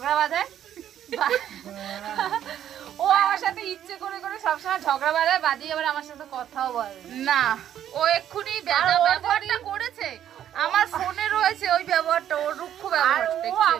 বাঁধায়। ও আমার সাথে ইচ্ছে করে করে সবসময় ঝগড়া বাঁধায়, বাদিয়ে আবার আমার সাথে কথাও বলে না। ও এক্ষুনি ব্যবহারটা করেছে, আমার ফোনে রয়েছে ওই ব্যবহারটা, ওর রুক্ষ ব্যবহার। ও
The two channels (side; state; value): left; quieter; 10.5 dB